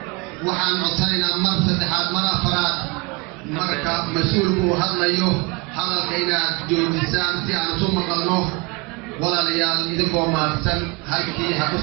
waxaan codsanaynaa mar saddexaad mar afraad marka mas-uulku hadlayo hadalka inaad joojisaan si aan isu maqalno walaalayaal idinkoo maadsan halkii ha ku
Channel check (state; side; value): quieter; left; 27.2 dB